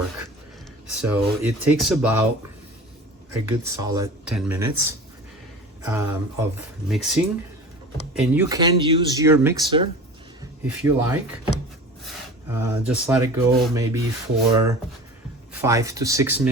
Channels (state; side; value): normal; both; correlation 0.37